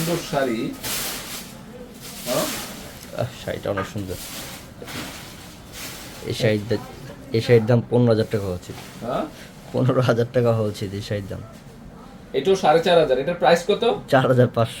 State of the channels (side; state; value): both; identical; correlation 1.00